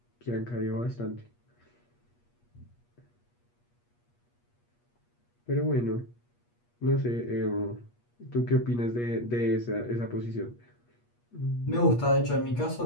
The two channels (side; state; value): right; late; 8.4 ms